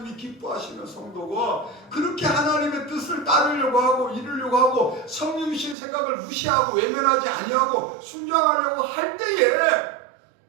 기뻐하시는 성도고, 그렇게 하나님의 뜻을 따르려고 하고 이루려고 하고 성령이신 생각을 무시하고 외면하지 아니하고 순종하려고 할 때에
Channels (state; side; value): drops out; left; at 5.8 s